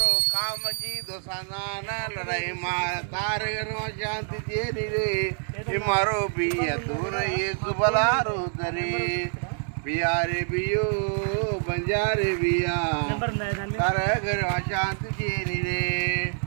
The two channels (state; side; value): silent; left; 61 dB below the other